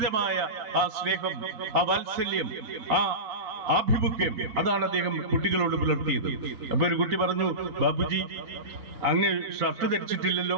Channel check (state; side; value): late; left; 3.9 ms